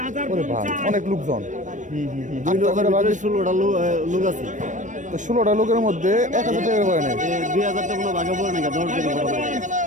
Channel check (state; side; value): late; left; 0.36 ms